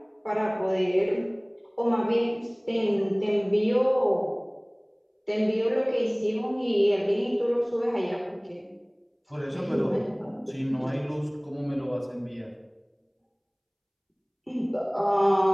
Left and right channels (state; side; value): identical; both; correlation 1.00